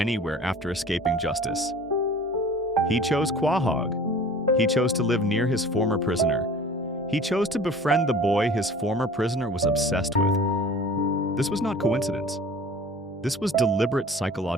after escaping justice. He chose Quahog. He chose to live near his former prisoner. He chose to befriend the boy his former prisoner was obsessed with. This was not coincidence. This was deliberate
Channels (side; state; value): both; normal; correlation 0.44